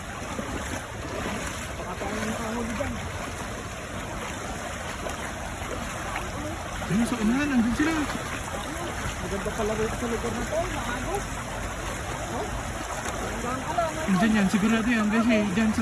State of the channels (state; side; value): identical; both; correlation 1.00